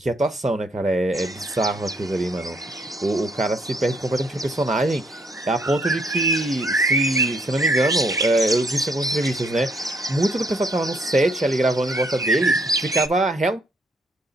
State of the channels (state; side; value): normal; both; correlation 0.70